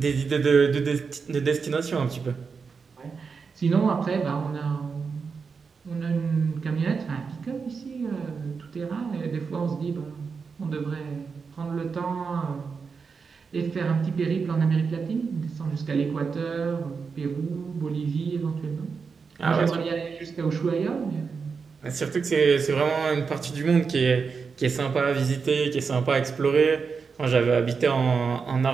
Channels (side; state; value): left; quieter; 5.3 dB